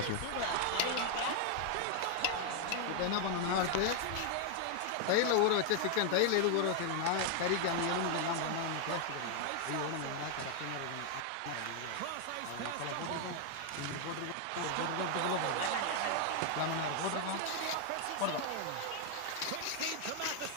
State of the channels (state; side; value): different; both; correlation 0.00